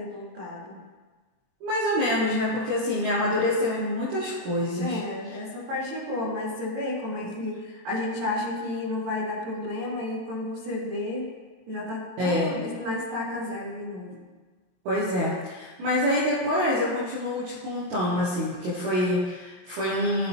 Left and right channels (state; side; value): late; left; 22 ms